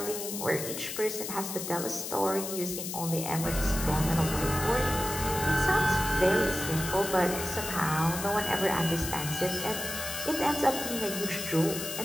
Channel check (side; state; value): left; noise; hiss, 6 dB below the sound